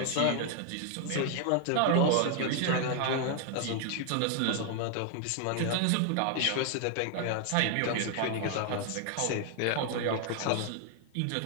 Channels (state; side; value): different; both; correlation 0.00